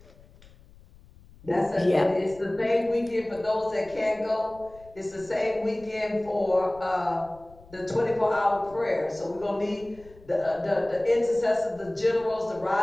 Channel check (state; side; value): noise; left; rumble, 24 dB below the sound